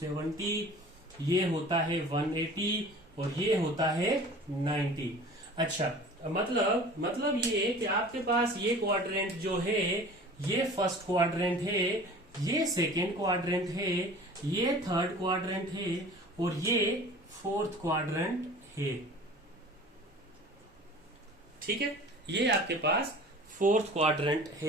ये होता है 180 और ये होता है 90। अच्छा, मतलब ये कि आपके पास ये क्वाड्रेंट जो है ये फर्स्ट क्वाड्रेंट है, ये सेकेंड क्वाड्रेंट है, ये थर्ड क्वाड्रेंट है और ये फोर्थ क्वाड्रेंट है, ठीक है, ये आपके पास फोर्थ क्वाड्रेंट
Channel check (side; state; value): both; normal; correlation 0.43